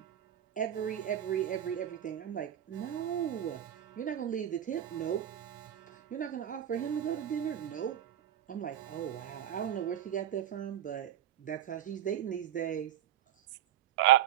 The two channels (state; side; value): quieter; left; 10.9 dB